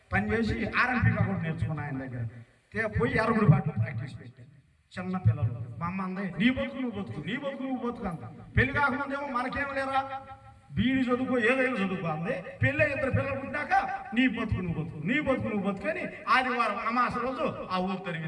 పనిచేసి ఆర్ఎంపీగా కూడా నేర్చుకున్నా ఆయన దగ్గర. పోయి ఎరుగుడు పాటలు ప్రాక్టీస్ పెట్టాను. చిన్న పిల్లలు మా అమ్మ అందే, నీ బతుకు నువ్వు బతుకు అంత. పెళ్లి కాకముందేమో మనకేం లేరా, బీడి చదువుకో ఏదైనా చదువుకో అంది. పెళ్ళి 2 పిల్లలు పుట్టాక నీ బతుకు నువ్వు బతుకు అని ఆదివారం అమాస రోజు ఆ ఊరు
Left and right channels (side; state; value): both; identical; correlation 1.00